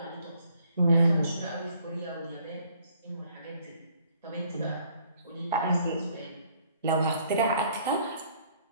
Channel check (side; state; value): both; inverted; correlation -0.63